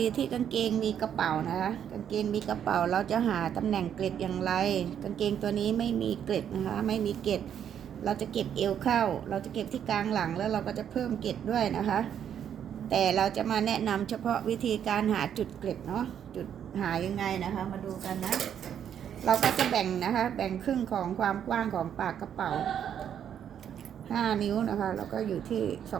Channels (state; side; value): quieter; left; 9.1 dB